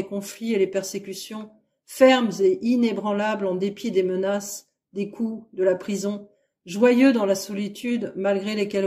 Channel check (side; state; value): both; identical; correlation 1.00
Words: conflits et les persécutions, fermes et inébranlables en dépit des menaces, des coups, de la prison, joyeux dans la solitude malgré les